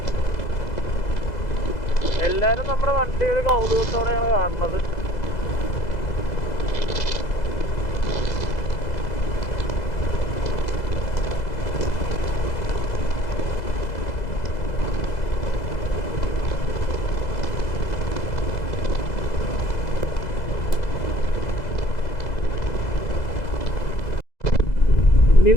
എല്ലാവരും നമ്മുടെ വണ്ടി ഒരു കൗതുകത്തോടെയാണ് കാണുന്നത്. ഇനി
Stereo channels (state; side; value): late; right; 2.0 ms